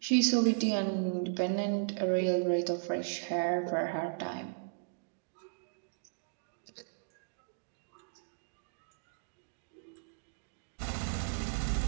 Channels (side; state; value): left; silent; digital silence